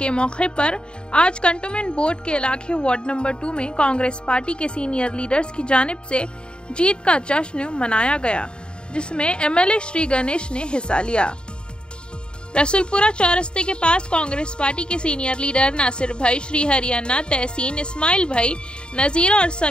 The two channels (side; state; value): right; late; 0.051 ms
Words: मौके पर आज कंटोनमेंट बोर्ड के इलाके वार्ड नंबर 2 में कांग्रेस पार्टी के सीनियर लीडर्स की जानिब से जीत का जश्न मनाया गया, जिसमें एमएलए श्री गणेश ने हिस्सा लिया। रसूलपुरा चौरस्ते के पास कांग्रेस पार्टी के सीनियर लीडर नासिर भाई, श्री हरियाणा, तहसीन, इस्माइल भाई, नजीर और